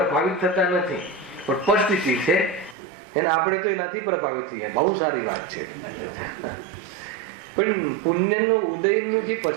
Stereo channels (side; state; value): left; drops out; at 2.8 s